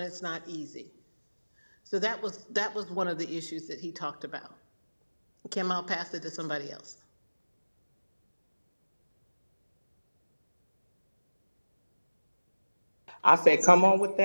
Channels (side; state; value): both; inverted; correlation -1.00